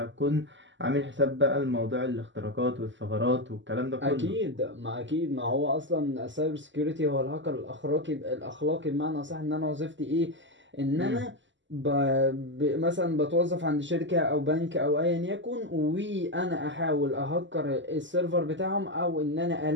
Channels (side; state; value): left; late; 0.54 ms